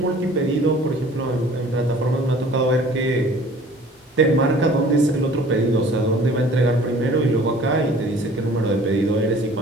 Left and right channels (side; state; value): both; normal; correlation 0.50